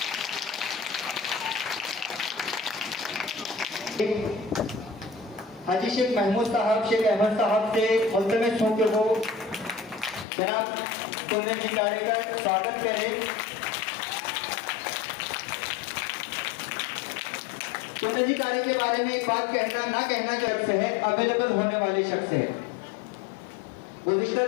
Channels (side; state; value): right; drops out; at 10.2 s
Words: हाजी शेख महमूद साहब शेख अहमद साहब से मुल्तमिस हूँ कि वो जनाब कुंदन जी गाड़ी का स्वागत करें। कुंदन जी गाड़ी के बारे में एक बात कहना ना कहना शख्स है, अवेलेबल होने वाले शख्स है। गुज़िश्ता